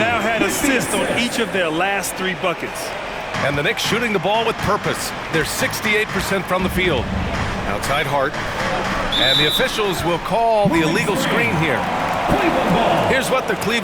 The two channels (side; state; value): both; identical; correlation 1.00